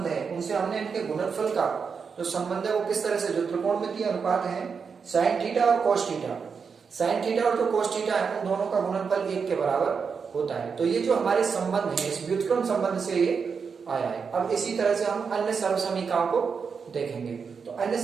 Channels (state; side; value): quieter; left; 5.8 dB